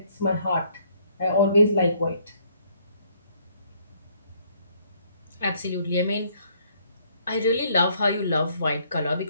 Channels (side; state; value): both; inverted; correlation -0.66